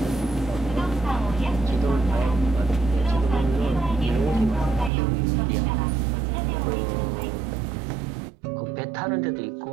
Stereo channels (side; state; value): left; drops out; at 4.9 s